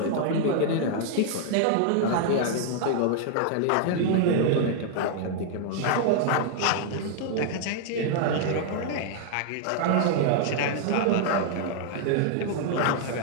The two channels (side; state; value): both; different; correlation 0.00